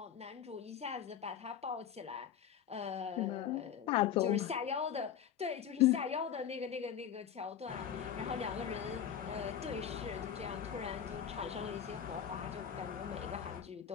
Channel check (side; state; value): right; quieter; 9.0 dB